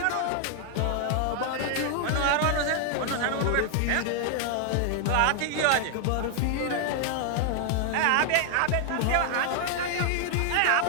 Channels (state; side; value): different; both; correlation 0.00